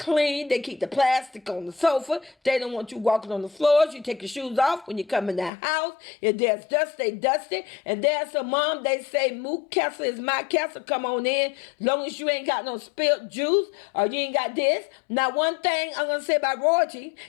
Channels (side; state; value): right; drops out; at 5.5 s